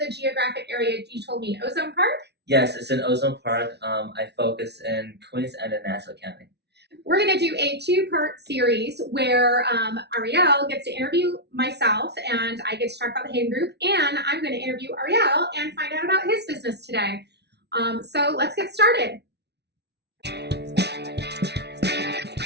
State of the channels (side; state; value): left; late; 0.49 ms